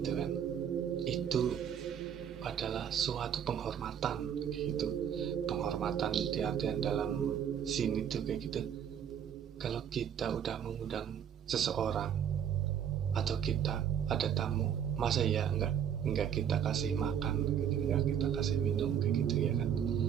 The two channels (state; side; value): quieter; left; 8.7 dB